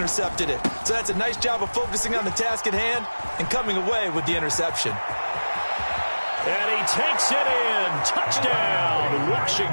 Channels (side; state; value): both; inverted; correlation -1.00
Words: it. So that's a nice job of focusing on the task at hand and coming away with the interception. And he takes it in. Touchdown,